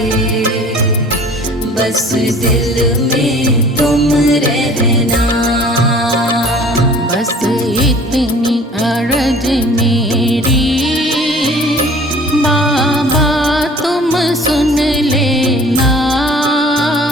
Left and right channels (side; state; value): both; normal; correlation 0.48